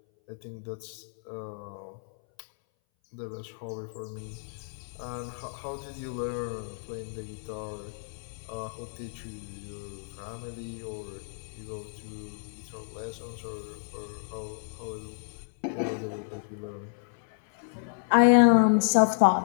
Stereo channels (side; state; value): right; silent; 57 dB below the other